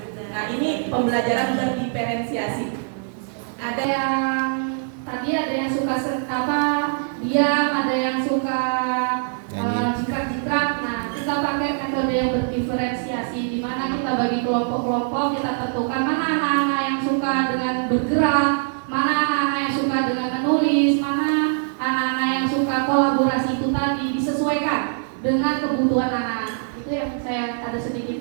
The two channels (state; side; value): silent; left; 59 dB below the other